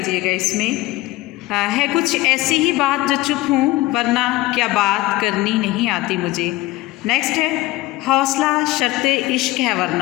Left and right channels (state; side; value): quieter; right; 18.5 dB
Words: گا، اس میں ہے کچھ ایسی ہی بات جو چپ ہوں ورنہ کیا بات کرنی نہیں آتی مجھے۔ نیکسٹ ہے حوصلہ شرط عشق ہے